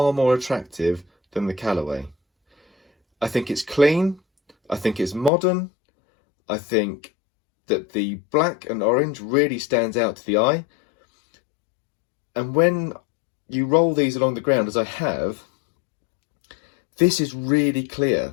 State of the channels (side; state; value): right; drops out; at 5.3 s